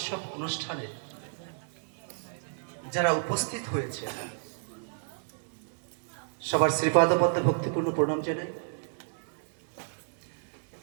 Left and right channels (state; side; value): silent; left; digital silence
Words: অনুষ্ঠানে যারা উপস্থিত হয়েছে সবার শ্রীপাদ পদ্মে ভক্তিপূর্ণ প্রণাম জানাই।